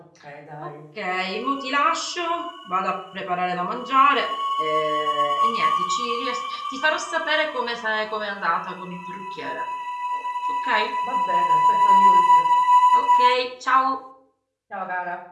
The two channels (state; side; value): identical; both; correlation 1.00